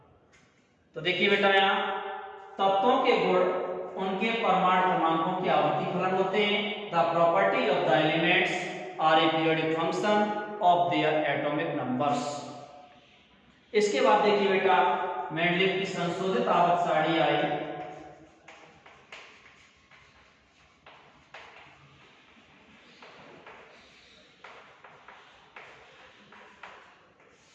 तो देखिए बेटा यहाँ तत्वों के गुण उनके परमाणु क्रमांकों के आवर्ती फलन होते हैं। The property of the elements are a periodic function of their atomic numbers. इसके बाद देखिए बेटा मेंडलीव की संशोधित आवर्त सारणी आई।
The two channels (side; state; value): both; identical; correlation 1.00